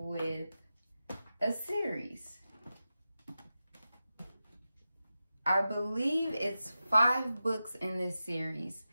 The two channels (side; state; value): both; inverted; correlation -0.93